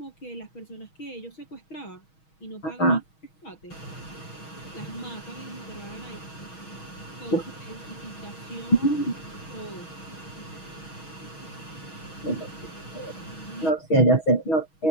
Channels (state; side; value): late; right; 6.3 ms